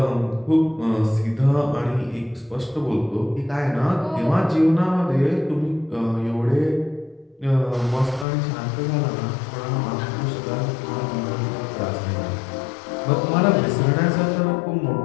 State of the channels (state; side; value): drops out; right; at 8.2 s